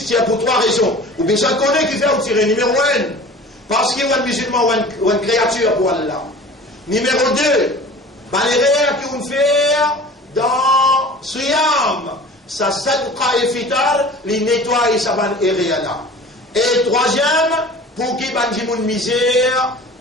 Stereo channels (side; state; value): both; normal; correlation 0.41